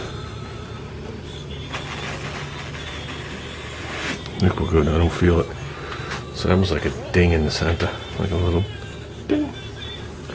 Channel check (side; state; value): both; identical; correlation 1.00